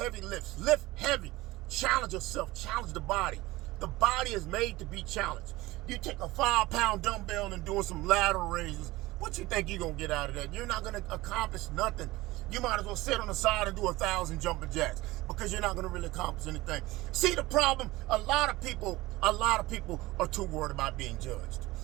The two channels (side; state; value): left; quieter; 19.4 dB